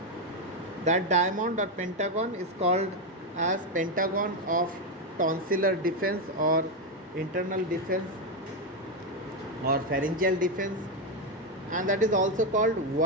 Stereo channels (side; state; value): both; normal; correlation 0.06